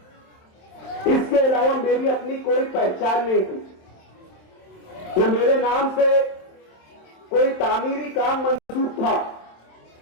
इसके अलावा मेरी अपनी कोई पहचान नहीं थी। न मेरे नाम से कोई तामीरी काम मंसूब था,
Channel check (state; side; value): late; right; 27 ms